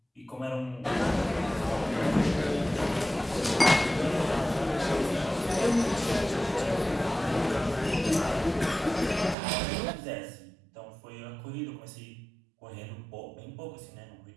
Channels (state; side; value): drops out; left; at 9.3 s